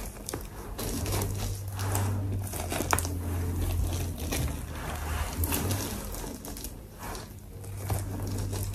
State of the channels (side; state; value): both; identical; correlation 1.00